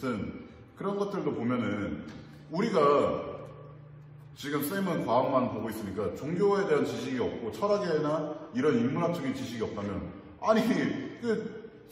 그런 것들도 보면은 우리가 지금 쌤은 과학만 보고 있으니까 종교에 대한 지식이 없고 철학이나 이런 인문학적인 지식이 없다면 아니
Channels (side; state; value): both; identical; correlation 1.00